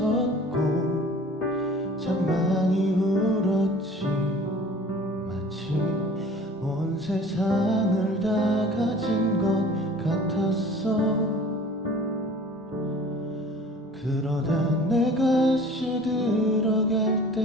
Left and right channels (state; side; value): normal; both; correlation 0.46